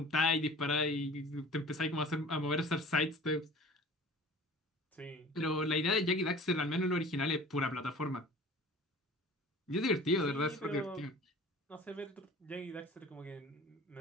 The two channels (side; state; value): both; normal; correlation 0.43